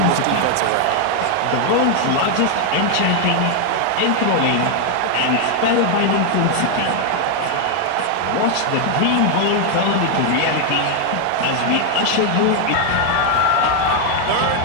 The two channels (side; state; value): both; different; correlation 0.00